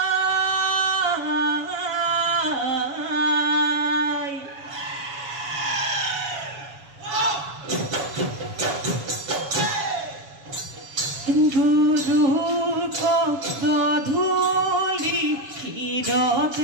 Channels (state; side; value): late; left; 7.1 ms